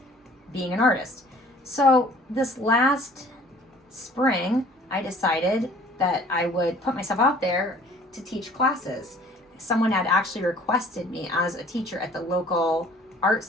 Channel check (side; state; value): both; normal; correlation 0.52